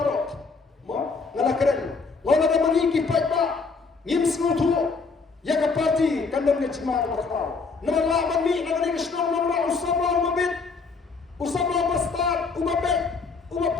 Ma ngala keren. Ngala ada mangi ki pa ngim suatu. Ya ke parti kandang ke cima bakal. Nama lawan ni nama ni kesnong nama usama umabit. Usama bastard umabit.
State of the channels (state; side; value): quieter; right; 4.5 dB